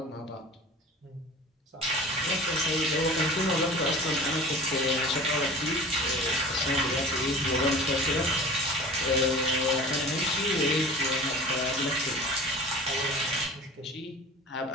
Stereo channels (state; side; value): normal; both; correlation 0.39